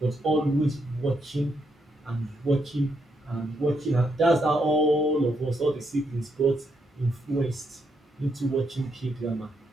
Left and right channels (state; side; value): normal; both; correlation 0.78